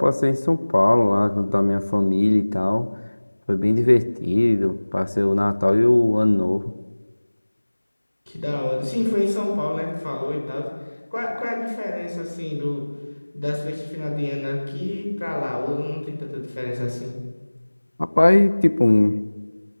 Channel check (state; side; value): inverted; both; correlation -1.00